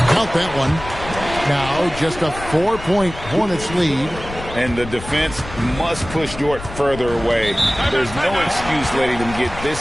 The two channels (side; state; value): left; noise; rumble, 12 dB below the sound